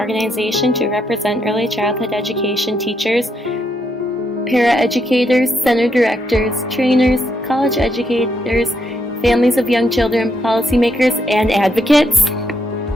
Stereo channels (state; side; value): normal; both; correlation 0.77